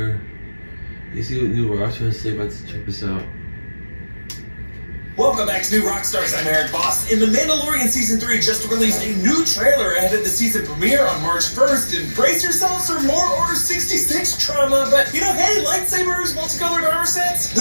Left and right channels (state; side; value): inverted; both; correlation -1.00